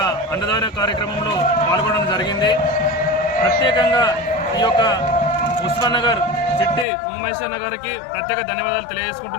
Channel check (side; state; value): right; drops out; at 6.9 s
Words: అన్నదాన కార్యక్రమంలో పాల్గొనడం జరిగింది. ప్రత్యేకంగా ఈ యొక్క ఉస్మాన్ నగర్ చిట్టి ఉమామహేశ్వర గారికి ప్రత్యేక ధన్యవాదాలు